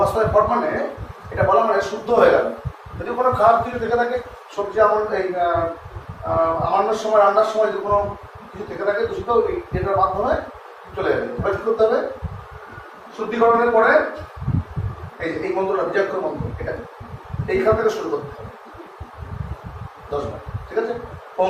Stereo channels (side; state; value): both; identical; correlation 1.00